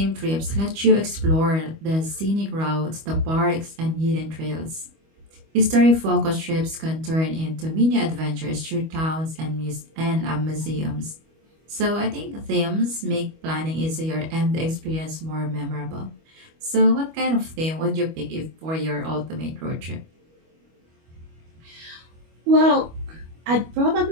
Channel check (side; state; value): left; late; 25 ms